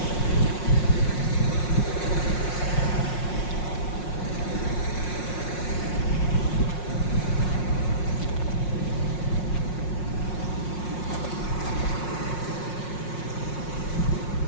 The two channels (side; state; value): right; late; 5.6 ms